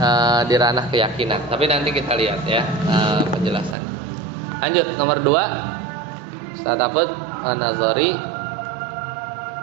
di ranah keyakinan. Tapi nanti kita lihat ya penjelasannya. Lanjut nomor 2 Ustaz Afud. Nazari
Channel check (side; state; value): left; drops out; at 3.8 s